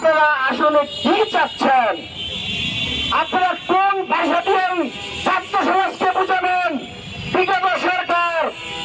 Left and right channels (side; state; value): both; identical; correlation 1.00